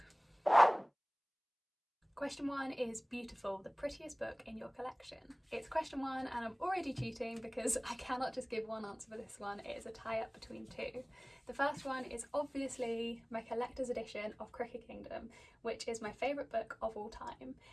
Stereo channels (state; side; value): identical; both; correlation 1.00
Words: Question 1 is Beautiful, the prettiest book in your collection. It's question 1 and I'm already cheating because I cannot just give one answer for this one. It is a tie-up between two. The first one is obviously my collector's edition of Cricket Kingdom, which is my favourite book of all time.